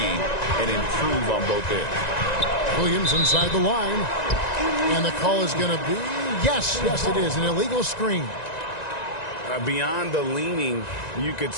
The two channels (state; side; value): late; right; 1.9 ms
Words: and improve on both ends. Williams inside the line. And the call is going to be, yes, it is, an illegal screen. Beyond the leaning, you could